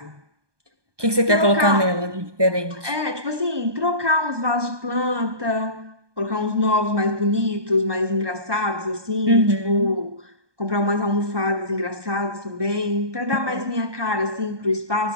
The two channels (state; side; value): late; left; 1.2 ms